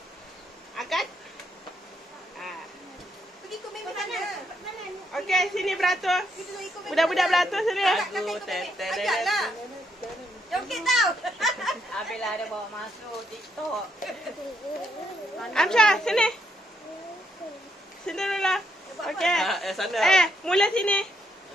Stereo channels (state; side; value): normal; both; correlation 0.75